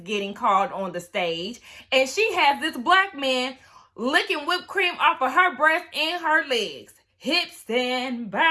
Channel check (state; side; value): identical; both; correlation 1.00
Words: getting called on the stage and she has this black man licking whipped cream off of her breast and her legs. Hips and